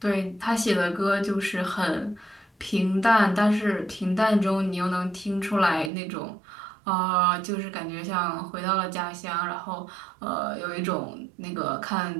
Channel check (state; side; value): drops out; left; at 5.9 s